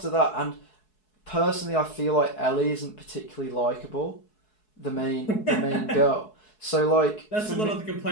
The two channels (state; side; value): late; right; 4.7 ms